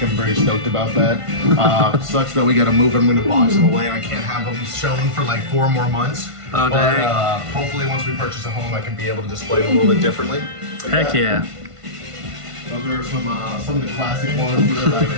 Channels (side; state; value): left; late; 1.5 ms